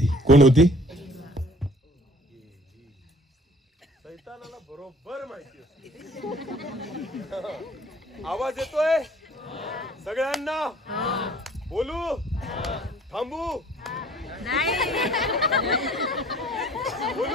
कोण होती? सैतानाला बरोबर माहिती असते. आवाज येतोय सगळ्यांना? बोलू? थांबू?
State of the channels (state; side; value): normal; both; correlation 0.53